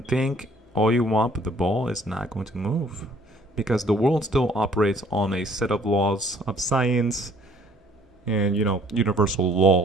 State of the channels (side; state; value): both; normal; correlation 0.59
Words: think all you want, but the ball is not going to move because the world still operates on a set of laws of science and, universal